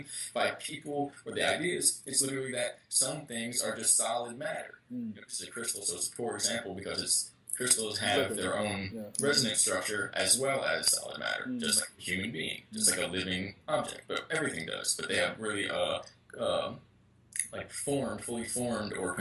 by people or the ideas, it's literally that some things are just solid matter. This is a crystal, so it's a poor example because crystals have their own resonance structure as well as solid matter, just like a human being, just like a living object, but everything does. But they have really fully formed or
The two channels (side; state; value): both; identical; correlation 1.00